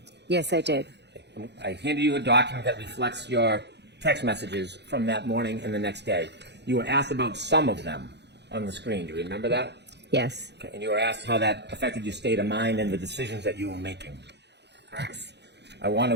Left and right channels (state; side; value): late; left; 0.50 ms